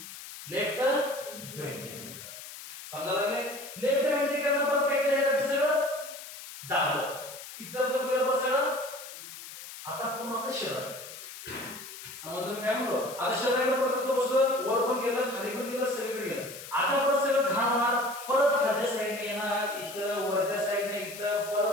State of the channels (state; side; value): noise; left; hiss, 13 dB below the sound